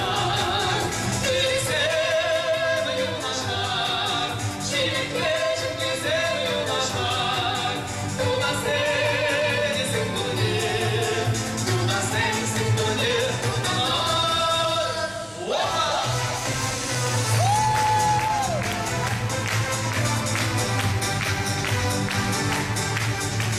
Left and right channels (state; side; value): identical; both; correlation 1.00